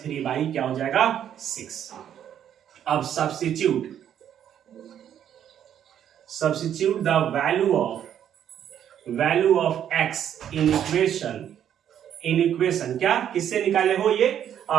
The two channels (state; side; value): quieter; left; 9.8 dB